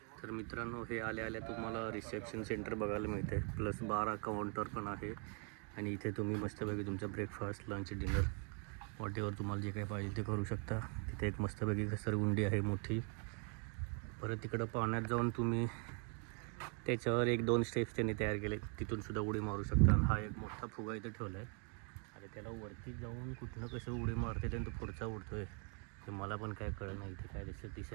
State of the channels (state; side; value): quieter; left; 39.8 dB